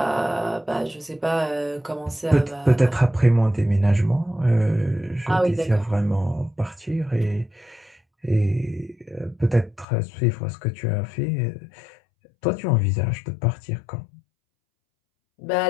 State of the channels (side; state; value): right; drops out; at 9.9 s